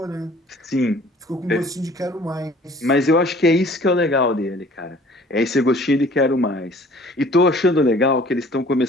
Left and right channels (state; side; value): normal; both; correlation 0.52